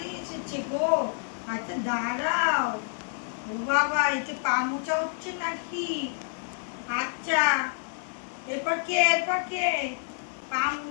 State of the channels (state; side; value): silent; right; digital silence